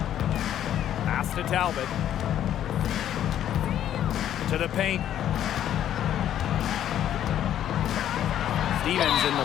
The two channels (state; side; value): quieter; right; 10.9 dB